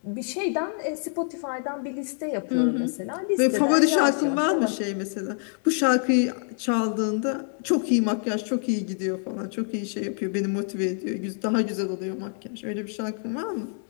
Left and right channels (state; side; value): silent; right; 61 dB below the other